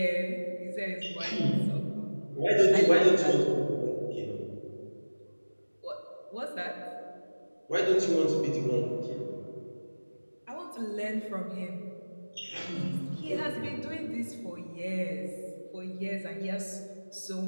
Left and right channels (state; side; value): inverted; both; correlation -1.00